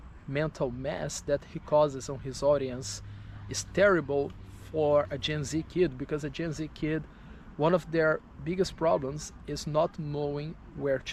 mental mess that he causes on his audience is terrible for a Gen Z kid, because a Gen Z kid One of their biggest problems is not knowing where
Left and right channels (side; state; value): both; identical; correlation 1.00